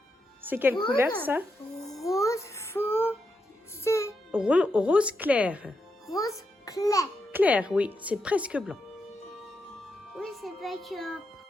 C'est quelle couleur, ça? Rose foncé. Rose clair. Rose clair. Clair, oui. C'est presque blanc. Oui, c'est pas que...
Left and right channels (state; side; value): normal; both; correlation 0.84